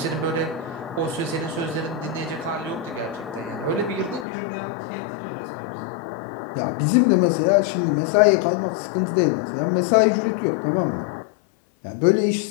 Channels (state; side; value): drops out; right; at 4.2 s